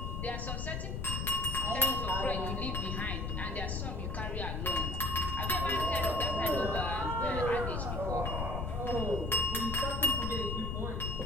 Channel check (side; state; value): left; noise; rumble, 2 dB below the sound